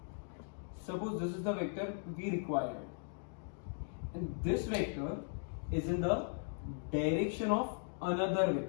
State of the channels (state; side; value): silent; right; digital silence